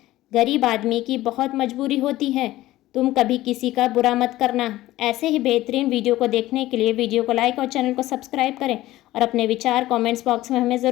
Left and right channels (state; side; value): quieter; right; 16.2 dB